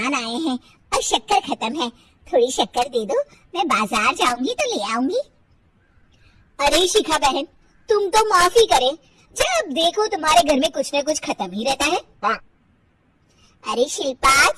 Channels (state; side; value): identical; both; correlation 1.00